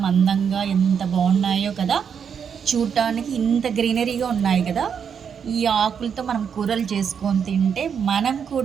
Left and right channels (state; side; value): quieter; left; 7.2 dB